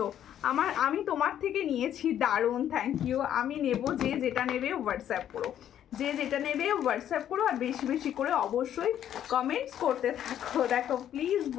আমি তোমার থেকে নিয়েছি, দারুণ, থ্যাংক ইউ। আমি নেব, যে যেটা নেবে হোয়াটসঅ্যাপ করো, যে যেটা নেবে হোয়াটসঅ্যাপ করো, আর বেশি বেশি করে অবশ্যই কমেন্টস করতে থাকো। দেখো প্লিজ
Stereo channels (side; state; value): right; quieter; 10.5 dB